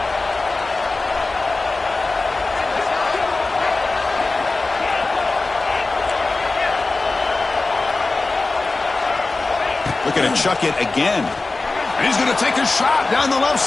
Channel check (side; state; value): right; quieter; 3.5 dB